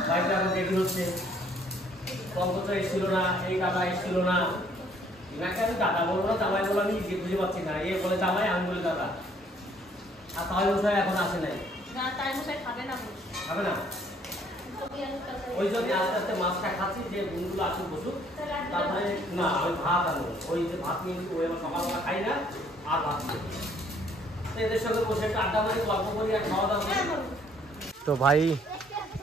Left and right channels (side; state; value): both; normal; correlation 0.62